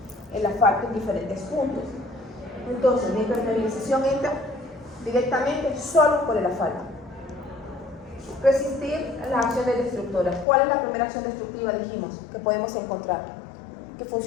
el asfalto en diferentes puntos. Entonces, la impermeabilización entra directamente solo por el asfalto. Resistir las acciones destructoras. ¿Cuál es la primera acción destructiva, dijimos, que podemos encontrar? Que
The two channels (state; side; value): drops out; right; at 10.5 s